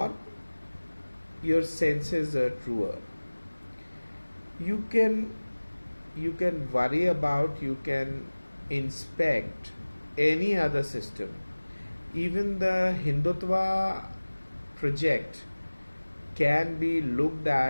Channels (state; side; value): inverted; both; correlation -1.00